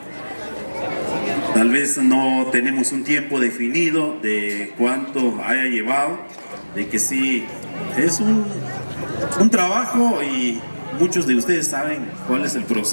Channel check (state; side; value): inverted; both; correlation -1.00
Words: tal vez no tenemos un tiempo definido de cuánto haya llevado, de que sí, es un trabajo, y muchos de ustedes saben cuál es el